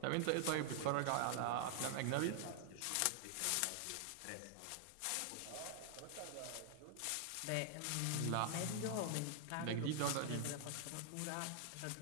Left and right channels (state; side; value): different; both; correlation 0.00